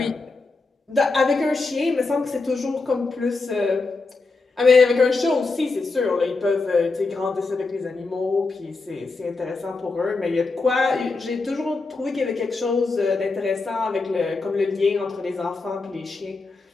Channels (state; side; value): quieter; right; 3.8 dB